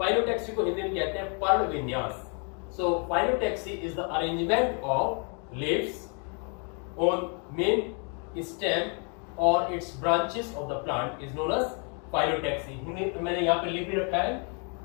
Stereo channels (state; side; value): quieter; right; 38.5 dB